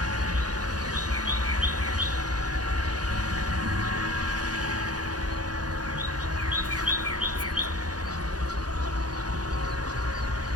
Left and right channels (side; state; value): left; late; 0.69 ms